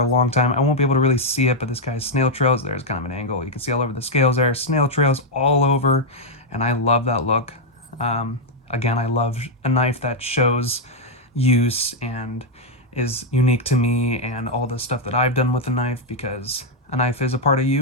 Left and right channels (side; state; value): both; normal; correlation 0.00